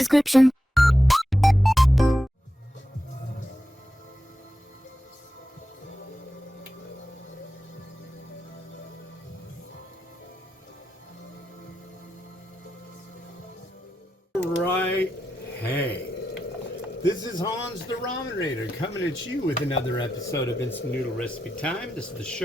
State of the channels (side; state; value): both; normal; correlation 0.89